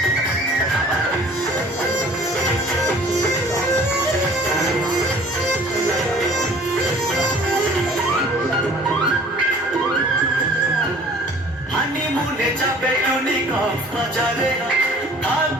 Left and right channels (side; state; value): both; normal; correlation 0.50